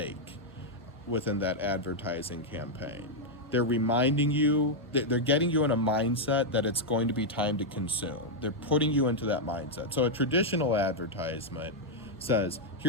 within that advertising campaign. They're reminding you, they're getting you in a mindset that it's going to be time to consume. They're putting you into that mindset. So a traditional advertisement says,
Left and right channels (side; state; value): both; normal; correlation -0.02